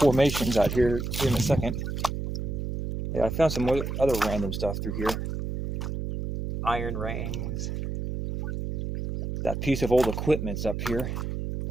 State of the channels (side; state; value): right; noise; hum, 4 dB below the sound